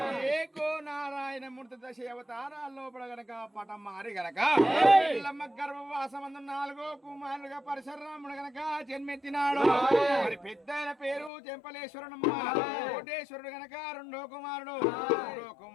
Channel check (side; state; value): right; drops out; at 11.3 s